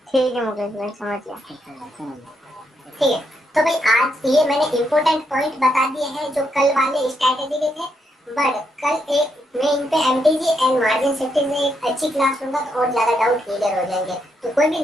ठीक है मुकेश भाई, समझ गया। ठीक है, तो भाई आज ये मैंने इम्पोर्टेंट पॉइंट बता दिए हैं जो कल वाले स्ट्रैटेजी के थे, बट कल एक मैं इन पे एमटीजी एंड मार्जिन सेफ्टी में एक अच्छी क्लास लूंगा तो और ज्यादा डाउट क्लियर हो जाएंगे। तो कोई भी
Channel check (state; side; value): normal; both; correlation 0.79